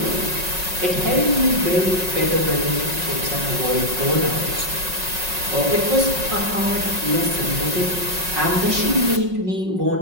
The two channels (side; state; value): left; late; 5.4 ms